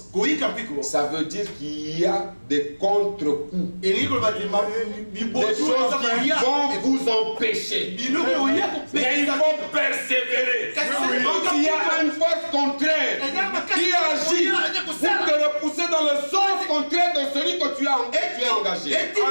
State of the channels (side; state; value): both; inverted; correlation -1.00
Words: ça veut dire qu'il y a des contre-coups, des choses qui vont vous empêcher. Mais il faut persévérer. Quand il y a une force contraire qui agit pour te repousser dans le sens contraire de celui que tu as engagé.